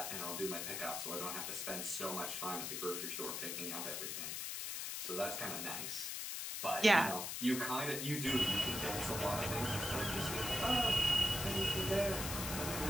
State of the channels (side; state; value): left; noise; hiss, 3 dB below the sound